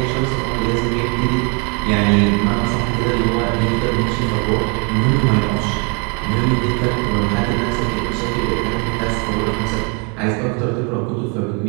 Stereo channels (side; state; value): left; quieter; 33.9 dB